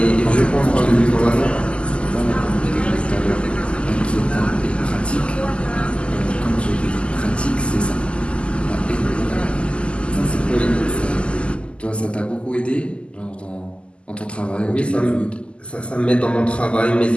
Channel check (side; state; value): right; late; 0.053 ms